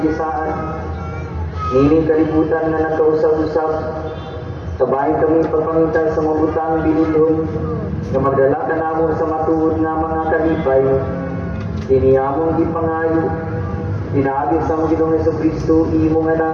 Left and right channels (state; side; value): identical; both; correlation 1.00